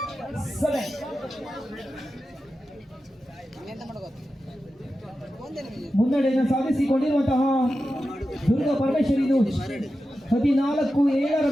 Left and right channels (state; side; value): normal; both; correlation 0.92